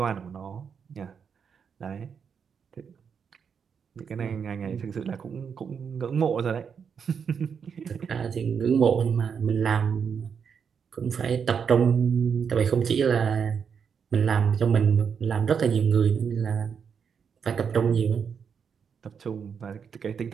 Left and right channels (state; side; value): quieter; left; 6.7 dB